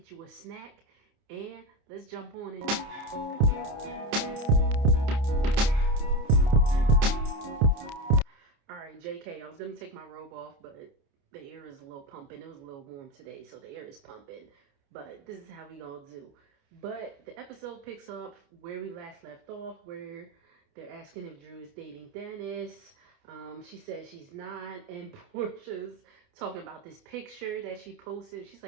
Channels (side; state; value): left; late; 29 ms